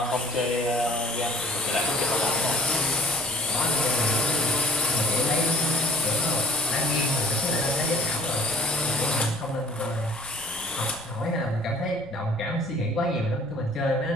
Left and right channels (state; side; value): noise; right; rumble, 24 dB below the sound